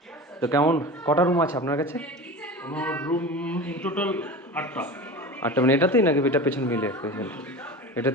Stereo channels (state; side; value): normal; both; correlation 0.31